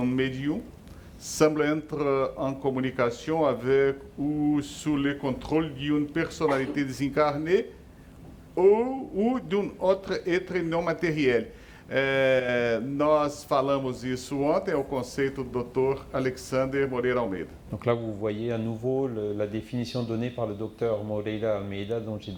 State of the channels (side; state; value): both; identical; correlation 1.00